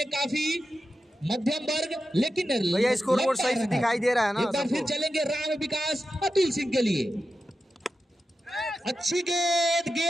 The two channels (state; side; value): normal; both; correlation 0.90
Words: काफी मध्यम वर्ग, लेकिन भैया स्कोरबोर्ड सही से दिखाई दे रहा है ना। एक बार फिर चलेंगे राम विकास अतुल सिंह के लिए। अच्छी